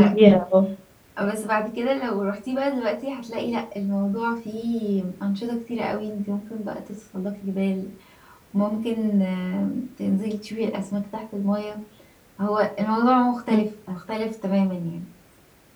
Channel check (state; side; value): identical; both; correlation 1.00